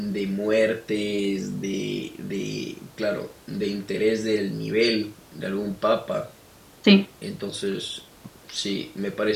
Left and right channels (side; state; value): both; identical; correlation 1.00